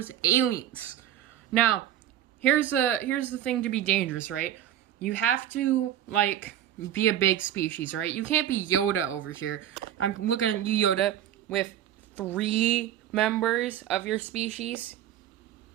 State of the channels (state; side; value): quieter; left; 11.3 dB